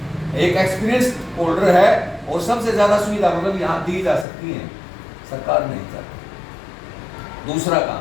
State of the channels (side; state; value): right; drops out; at 4.2 s